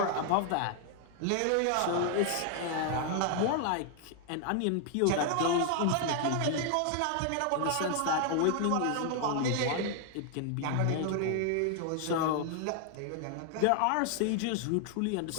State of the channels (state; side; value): different; both; correlation 0.00